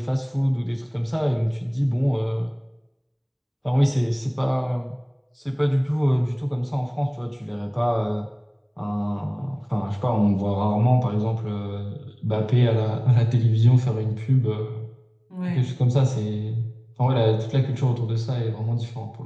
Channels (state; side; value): identical; both; correlation 1.00